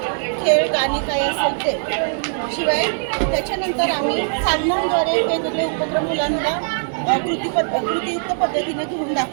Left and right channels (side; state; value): left; silent; 65 dB below the other